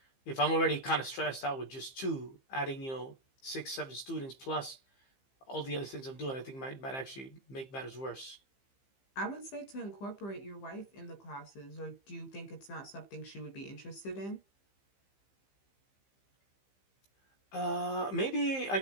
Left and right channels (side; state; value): right; late; 15 ms